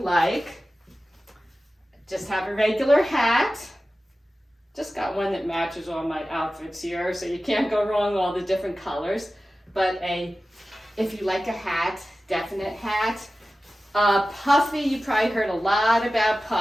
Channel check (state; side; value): normal; both; correlation 0.95